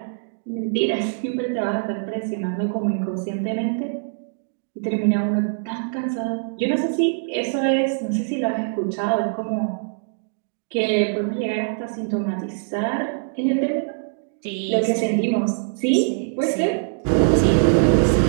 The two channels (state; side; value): silent; left; digital silence